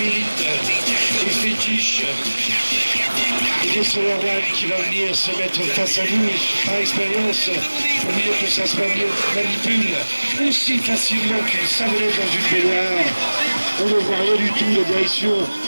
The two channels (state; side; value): inverted; both; correlation -1.00